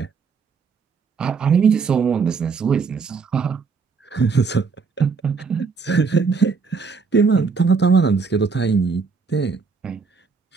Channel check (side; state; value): left; quieter; 5.1 dB